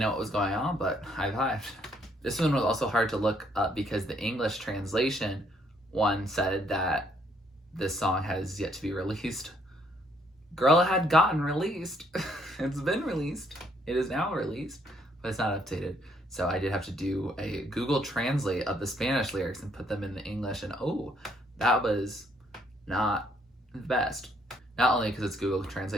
what was going on, but I vibed. This one was also hard to look up because the English translation one said that this song has yet to be released. Girl, it had gotten released. It's been released. It is now released, but it's not updated. So I did have to do a Google Translate of the Spanish lyrics and put them in the English, and oh, that was not the best. Not only because it's Google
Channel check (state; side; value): normal; both; correlation 0.68